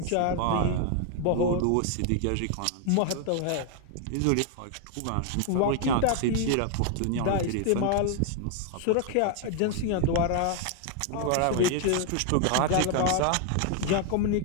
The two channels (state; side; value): different; both; correlation 0.00